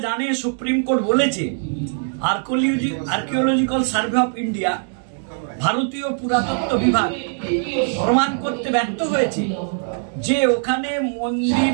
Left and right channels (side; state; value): left; silent; digital silence